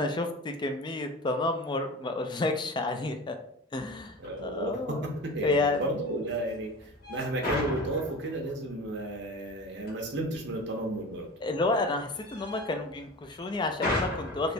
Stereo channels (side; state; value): both; normal; correlation 0.33